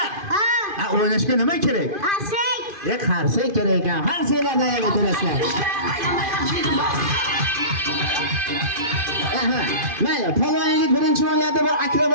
Ha. O'ynashga nima kerak? Qarsak. Qarsak kerak ekan. Qarsaklarda ham o'tirasizlar. Mayli, polvon yigit birinchi o'yinlarda bir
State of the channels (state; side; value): late; left; 2.5 ms